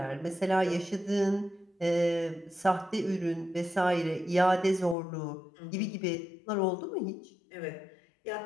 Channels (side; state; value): right; drops out; at 5.0 s